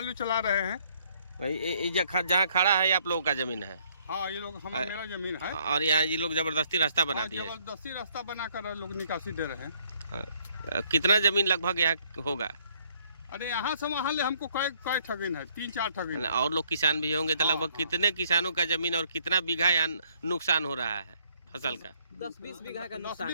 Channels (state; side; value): inverted; both; correlation -0.66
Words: चला रहे हैं। भाई, जहाँ खड़ा है ये आप लोगों का जमीन है? हाँ, ये लोग मेरा जमीन है, और यहाँ ये लोग जबरदस्ती रास्ता बना दिए? जबरदस्ती रास्ता बनाकर लोग निकासी दे रहे हैं। कितना जमीन लगभग यहाँ होगा? अरे यहाँ से वहाँ ले हमको कई ठगिन है, 3-4 ठगिन। और लोग किसान भी होंगे, तो लगभग कितने किसानों का जमीन और कितना बीघा यहाँ नुकसान हो रहा है फसल का? 10-20 बीघा का नुकसान